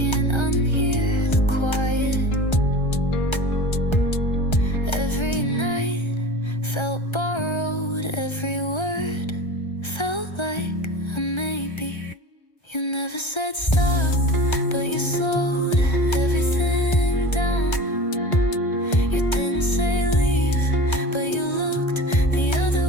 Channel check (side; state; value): right; late; 1.3 ms